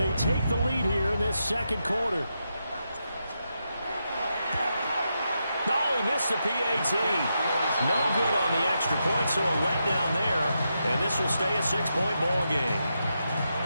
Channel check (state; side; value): inverted; both; correlation -0.85